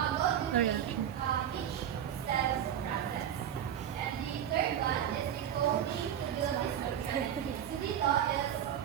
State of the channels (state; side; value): quieter; left; 9.9 dB